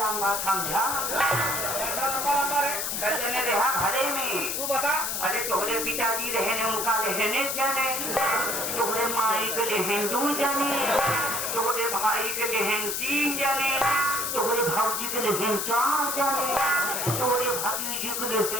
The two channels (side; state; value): left; noise; hiss, 1 dB below the sound